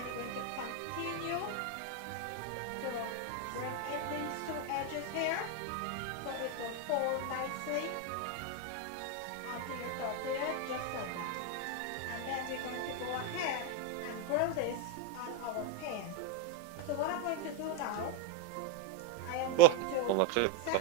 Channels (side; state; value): both; different; correlation 0.02